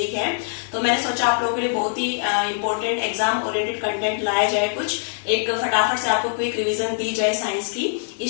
है, तो मैंने सोचा आप लोगों के लिए बहुत ही इंपॉर्टेंट एग्जाम ओरिएंटेड कंटेंट लाया जाए। कुछ एक फटाफट से आपको क्विक रिवीजन दी जाए साइंस की।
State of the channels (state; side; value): silent; right; digital silence